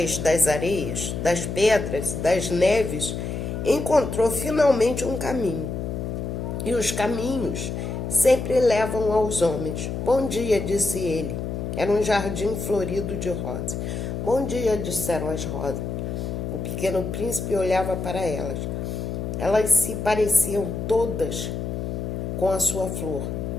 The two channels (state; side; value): noise; left; hum, 4 dB below the sound